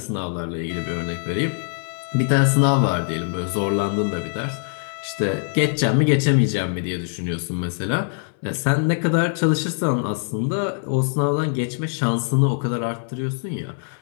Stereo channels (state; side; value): silent; right; 61 dB below the other